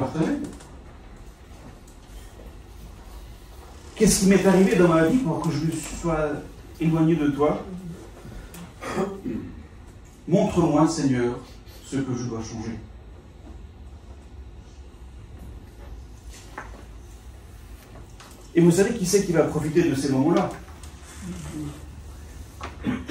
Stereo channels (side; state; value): both; identical; correlation 1.00